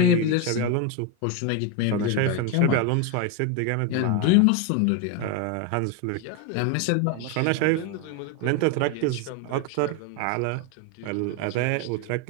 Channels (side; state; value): both; different; correlation 0.02